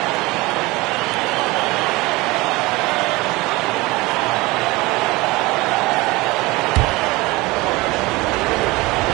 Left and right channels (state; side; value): quieter; left; 21.9 dB